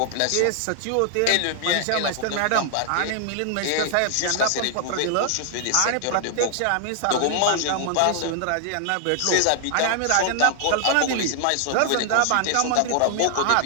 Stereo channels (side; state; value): both; different; correlation 0.00